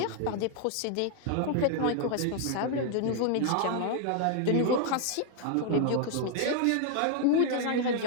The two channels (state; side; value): different; both; correlation 0.00